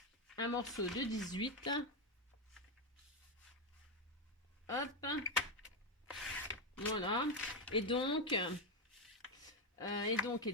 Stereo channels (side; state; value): both; normal; correlation 0.07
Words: Un morceau de 18. Hop. Voilà. Et donc,